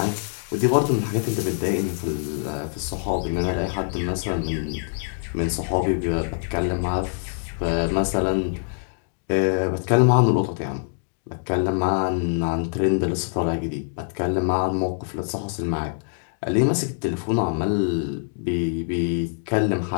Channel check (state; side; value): silent; right; digital silence